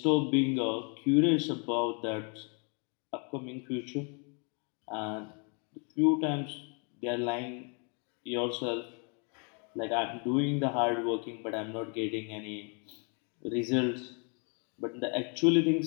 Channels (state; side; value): quieter; right; 36.4 dB